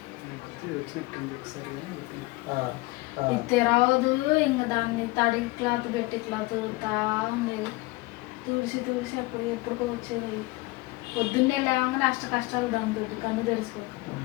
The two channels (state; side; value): quieter; right; 21.9 dB